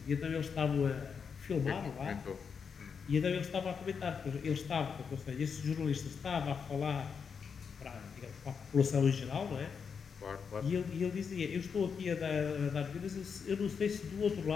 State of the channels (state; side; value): quieter; right; 6.2 dB